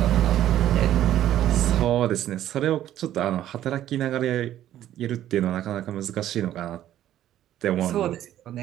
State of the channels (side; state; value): left; quieter; 12.2 dB